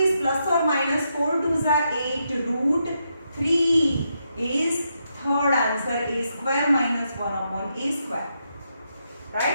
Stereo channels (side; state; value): both; inverted; correlation -0.82